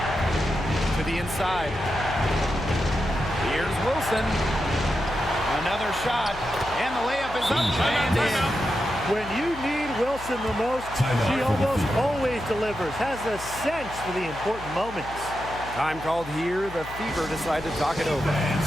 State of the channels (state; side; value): noise; left; hum, 15 dB below the sound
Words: To the inside. Here's Wilson. Another shot. And the layup is up and in. When you need Wilson the most, she almost always delivers, has a sense for the important moments. Time called here. The Fever decide to talk it over.